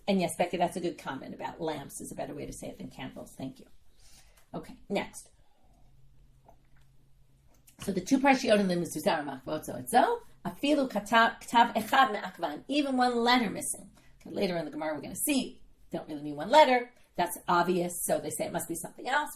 And yes, Becky, that's a good comment about lamps is a better way to say it than candles. Thank you. Okay, next. So the 2 parshiyot in the mezuzah are makvot zoetzo, afilu katav echad me'akvan, even 1 letter missing. Okay, later in the Gemara, we're going to see, don't really mean 1 letter. That's obvious, so they say it must be something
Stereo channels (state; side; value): identical; both; correlation 1.00